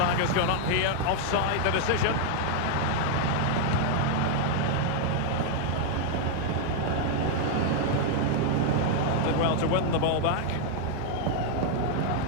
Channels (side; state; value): both; different; correlation 0.00